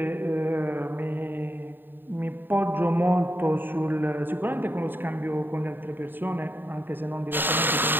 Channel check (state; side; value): late; left; 0.095 ms